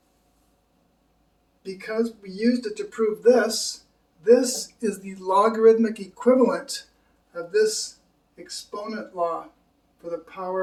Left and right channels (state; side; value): identical; both; correlation 1.00